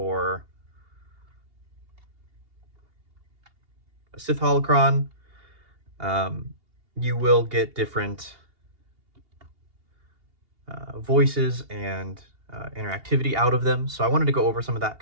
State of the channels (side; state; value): left; late; 2.8 ms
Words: a Sith Holocron, you will get different voices and interactivity out of them. So I wanted to go over some of that